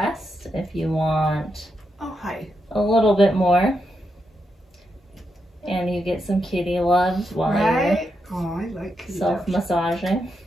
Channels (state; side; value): normal; both; correlation 0.83